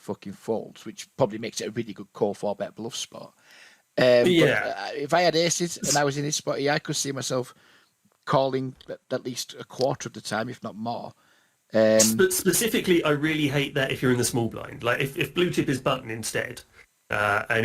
fucking folds, which probably makes it a really good call 4-bet bluff spot. But if I had aces and I was in this spot here, I could see myself calling at least a quarter of the time, if not more. But specifically, I really hate that if you're in the small blind. Like if blue chip is button instead, and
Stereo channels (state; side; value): identical; both; correlation 1.00